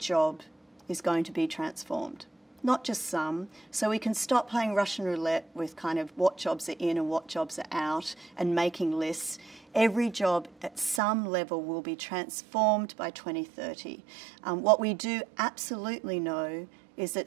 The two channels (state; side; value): drops out; left; at 11.0 s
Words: is going to be transformed. Not just some, so we can stop playing Russian roulette with kind of what jobs are in and what jobs are out and making lists. Every job at some level will be transformed by 2030. What we do absolutely know is